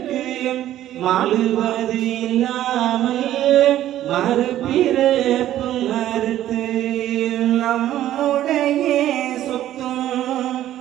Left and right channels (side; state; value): left; quieter; 12.8 dB